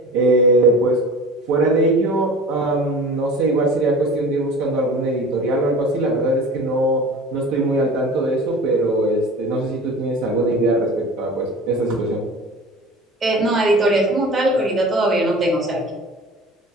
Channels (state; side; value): normal; both; correlation 0.39